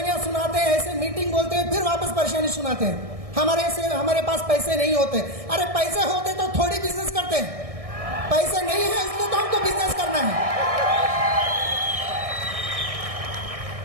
सुनाते हैं, ऐसे मीटिंग बोलते हैं, फिर वापस परेशानी सुनाते हैं। हमारे पास पैसे नहीं होते। अरे पैसे होते तो थोड़ी बिजनेस करते हैं, पैसे नहीं है इसलिए तो हमको बिजनेस करना है।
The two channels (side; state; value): left; late; 1.6 ms